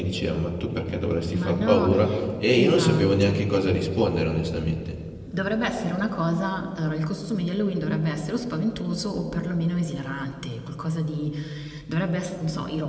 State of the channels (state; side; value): identical; both; correlation 1.00